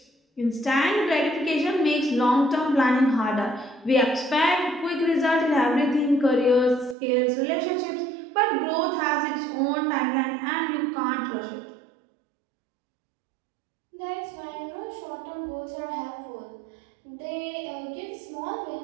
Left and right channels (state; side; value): drops out; left; at 7.0 s